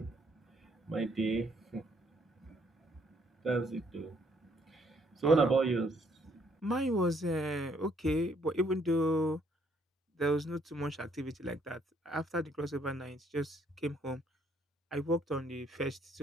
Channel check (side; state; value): both; normal; correlation 0.68